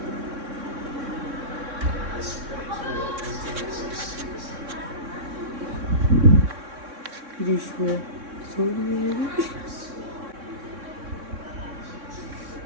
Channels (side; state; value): left; late; 3.6 ms